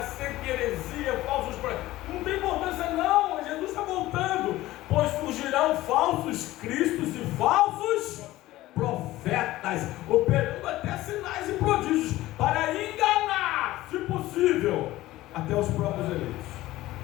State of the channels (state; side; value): quieter; right; 16.7 dB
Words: seca heresia, falsos profetas. Não tem importância não, Jesus está voltando. Pois surgirão falsos cristos e falsos profetas, operando até sinais e prodígios, para enganar, se possível, até os próprios eleitos.